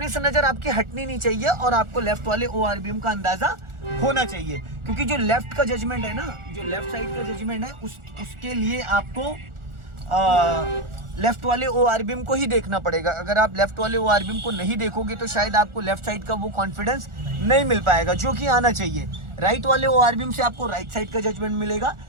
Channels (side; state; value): left; late; 1.4 ms